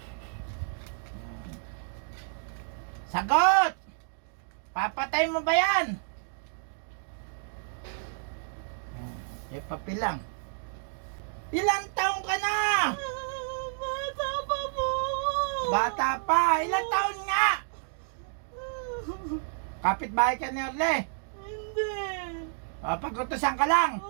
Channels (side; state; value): left; silent; digital silence